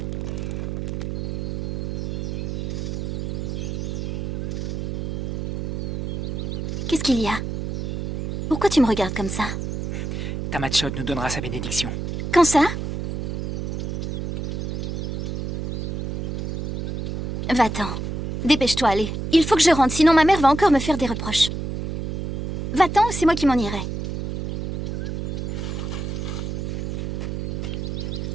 Qu'est-ce qu'il y a? Pourquoi tu me regardes comme ça? Tamachot nous donnera sa bénédiction. Quand ça? Va-t'en. Dépêche-toi, allez. Il faut que je rentre, sinon ma mère va encore me faire des reproches. Va-t'en ou c'est moi qui m'en irai.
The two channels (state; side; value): noise; right; hum, 3 dB below the sound